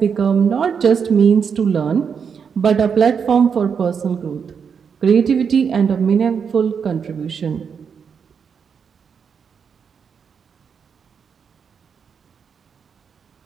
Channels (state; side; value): quieter; left; 6.6 dB